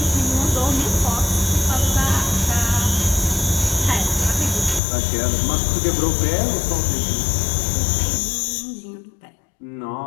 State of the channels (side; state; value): right; drops out; at 4.8 s